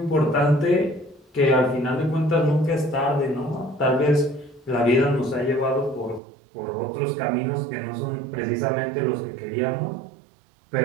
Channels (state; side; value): drops out; left; at 6.2 s